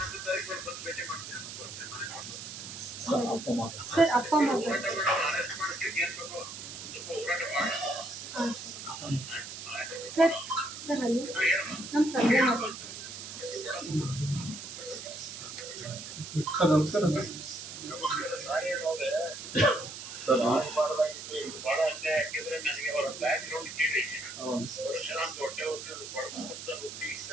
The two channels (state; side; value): noise; right; hiss, 10 dB below the sound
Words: ಸರ್ ಅಪ್ಪ ಮಗ. ಹಾಂ ಸರ್. ಸರ್ ಅಲ್ಲಿ ನಮ್ಮ ತಂದೆ ಮಾತಾಡ್ತಾರೆ. ಸರ್ ನಮಸ್ಕಾರ ಸರ್. ಸರ್ ಬಹಳ ಅನ್ಯಾಯ ಹಾಕಿದ್ರೆ ನನಗೆ ಅವರ ಬ್ಯಾಕ್ ಗ್ರೌಂಡ್ ಕೇಳಿ ವರ್ಷ ಹೊಟ್ಟೆ ಹುಟ್ಟಿ